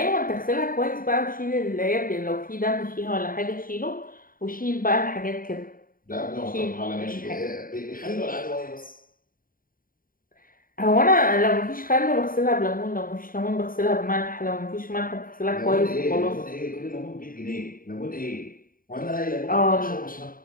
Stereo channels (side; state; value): right; late; 0.41 ms